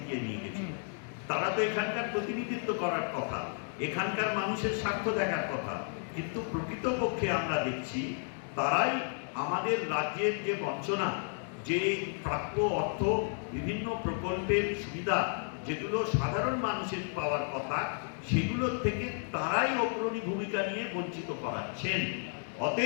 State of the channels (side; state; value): right; silent; 56 dB below the other